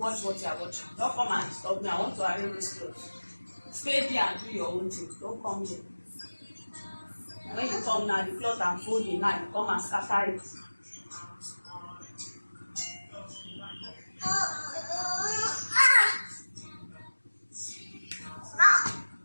what you are watching. Don't come and stop me. I want to arrange this clothes. Stay there and do your own thing. Don't come here. When you come now, the cloth I'm folding now, you come and scatter it.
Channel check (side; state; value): both; inverted; correlation -1.00